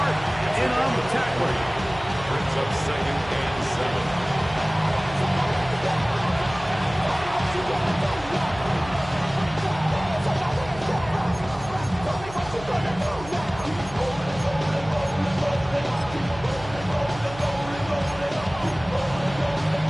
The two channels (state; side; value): noise; right; hum, 15 dB below the sound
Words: in on the tackle. Brings up 2nd and 7.